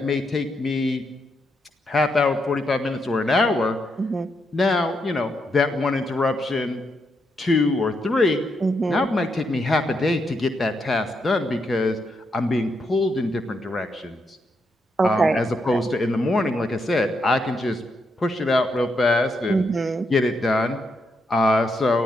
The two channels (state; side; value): normal; both; correlation 0.80